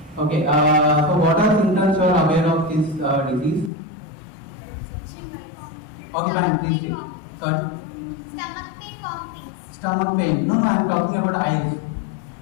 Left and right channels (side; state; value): right; drops out; at 3.7 s